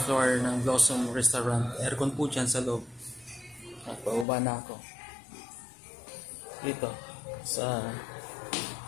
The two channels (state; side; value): drops out; right; at 4.2 s